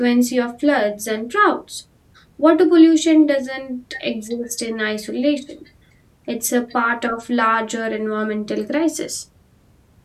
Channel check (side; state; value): both; identical; correlation 1.00